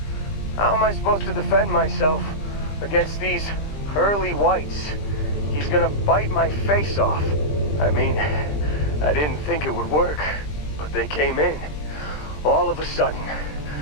How am I supposed to defend myself against these early whites? He's gonna bite my face off." I mean, I didn't think it would work, but they came in. All of a sudden,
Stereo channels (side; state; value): right; late; 20 ms